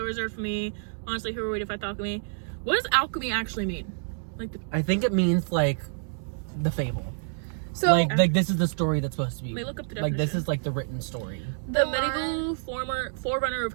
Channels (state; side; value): silent; left; digital silence